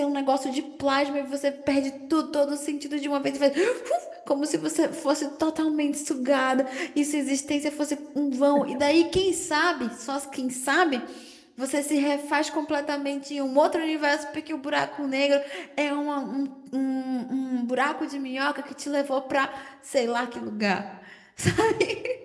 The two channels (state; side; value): identical; both; correlation 1.00